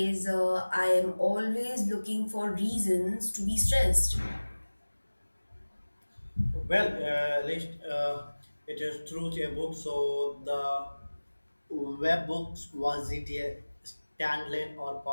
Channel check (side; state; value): both; inverted; correlation -1.00